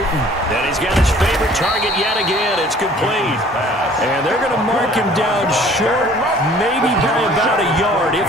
And he's got his favorite target yet again. It's complete. And they're going to mark him down short, maybe by about a yard, if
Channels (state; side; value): normal; both; correlation 0.53